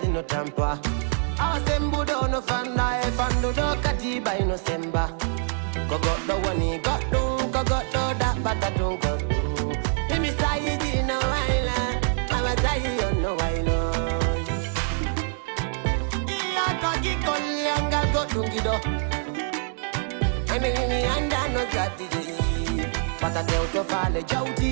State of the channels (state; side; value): silent; left; 62 dB below the other